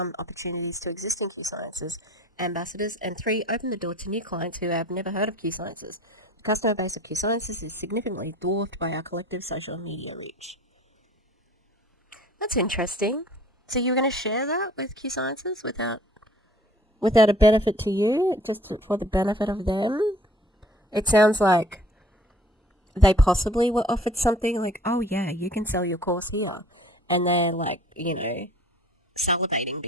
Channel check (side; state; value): both; normal; correlation 0.51